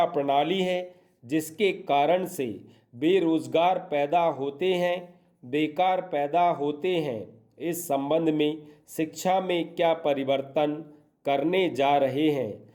प्रणाली है जिसके कारण से बेरोजगार पैदा होते हैं, बेकार पैदा होते हैं, इस संबंध में शिक्षा में क्या परिवर्तन करने जा रहे हैं।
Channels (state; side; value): identical; both; correlation 1.00